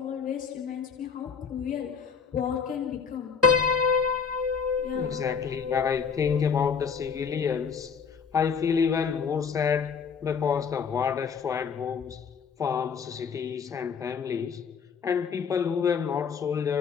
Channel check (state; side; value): quieter; right; 6.3 dB